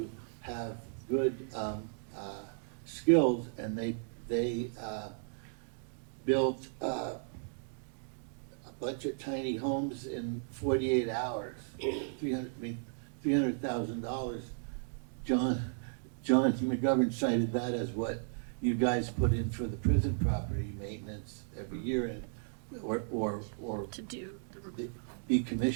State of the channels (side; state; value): left; silent; digital silence